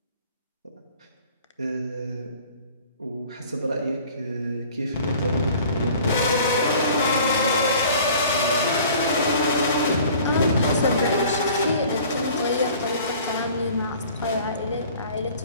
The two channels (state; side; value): inverted; both; correlation -0.48